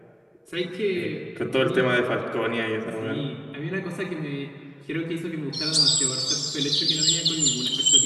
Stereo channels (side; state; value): both; identical; correlation 1.00